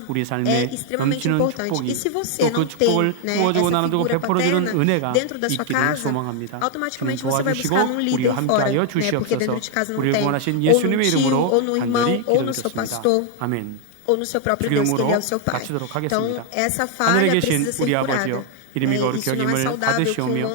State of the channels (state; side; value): different; both; correlation 0.00